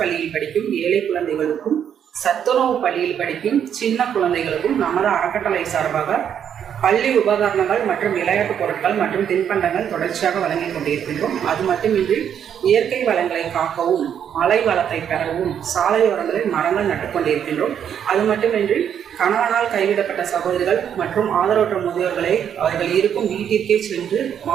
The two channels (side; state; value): left; quieter; 8.8 dB